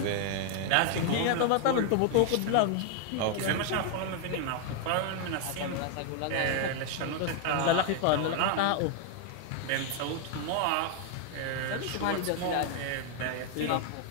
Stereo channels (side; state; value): both; different; correlation 0.00